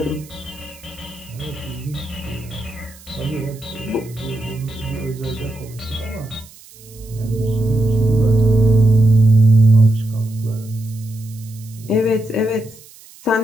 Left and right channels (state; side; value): noise; right; hiss, 22 dB below the sound